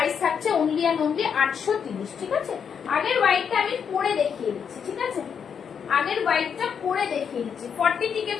থাকছে অনলি অ্যান্ড অনলি 830, ঠিক আছে। আগের হোয়াইটটা আমি পরে দেখিয়ে দিচ্ছি, ঠিক আছে। আগের হোয়াইটটা পরে দেখিয়ে দিচ্ছি। 40 থেকে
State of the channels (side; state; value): right; quieter; 7.2 dB